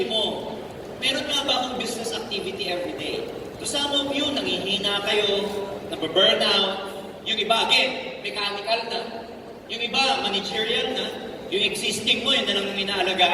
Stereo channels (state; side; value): identical; both; correlation 1.00